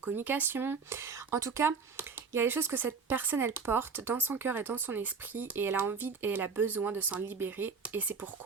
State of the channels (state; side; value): quieter; left; 5.2 dB